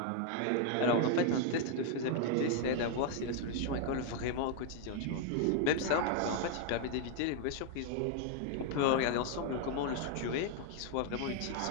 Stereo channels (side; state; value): both; different; correlation 0.00